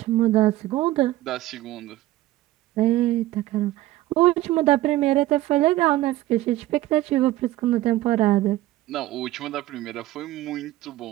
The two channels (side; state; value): left; quieter; 16.1 dB